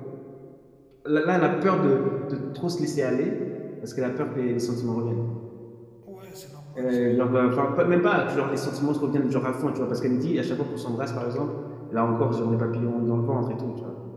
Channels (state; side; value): identical; both; correlation 1.00